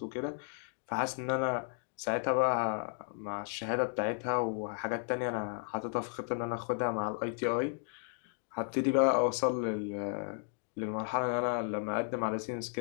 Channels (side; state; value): right; silent; 55 dB below the other